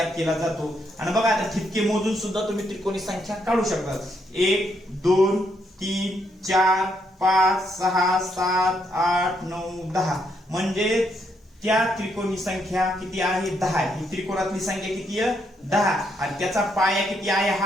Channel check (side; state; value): both; normal; correlation 0.76